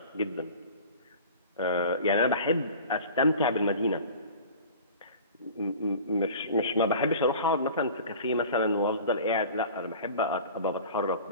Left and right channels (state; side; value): inverted; both; correlation -0.41